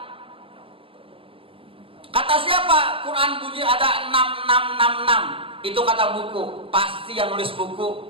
Kata siapa Quran bunyi ada 6666? Itu kata buku. Pasti yang nulis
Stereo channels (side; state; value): left; late; 0.26 ms